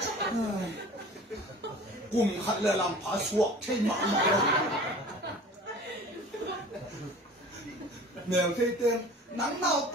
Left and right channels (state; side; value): normal; both; correlation 0.42